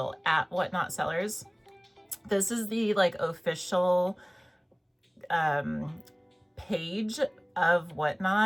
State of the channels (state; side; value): identical; both; correlation 1.00